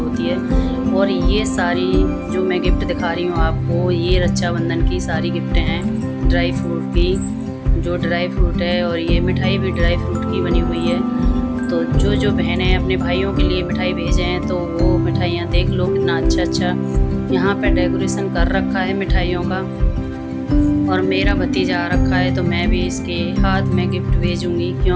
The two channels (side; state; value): both; identical; correlation 1.00